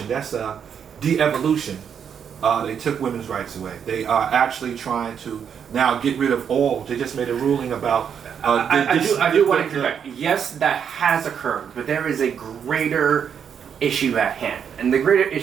That's a de-evolution. They took women's rights away. They are actually trying to now get rid of all. They just made a ruling about. I do want to interject. Yes, that has occurred, but there is a greater issue at hand. And the greater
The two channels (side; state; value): left; quieter; 7.7 dB